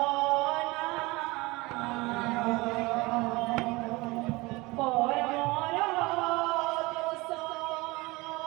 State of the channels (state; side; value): quieter; left; 22.9 dB